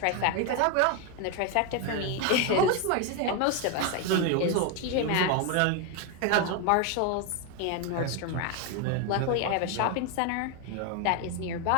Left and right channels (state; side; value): different; both; correlation 0.02